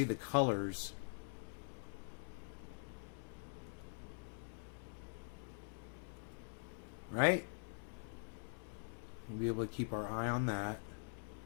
the colors. Right? We'll be able to keep our eye on that.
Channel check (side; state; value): right; silent; digital silence